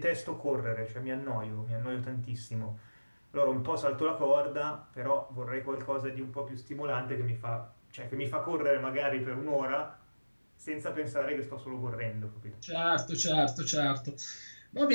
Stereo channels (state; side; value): inverted; both; correlation -1.00